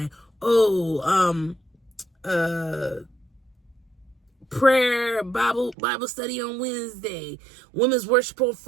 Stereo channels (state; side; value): drops out; left; at 5.8 s